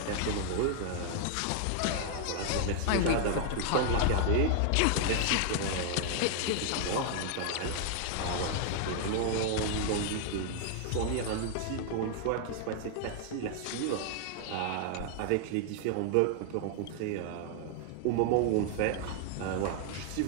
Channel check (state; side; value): different; both; correlation 0.00